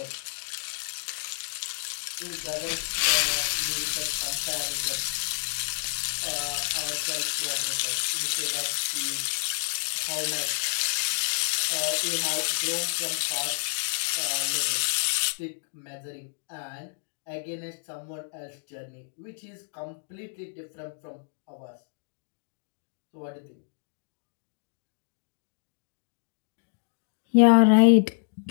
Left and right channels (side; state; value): right; silent; digital silence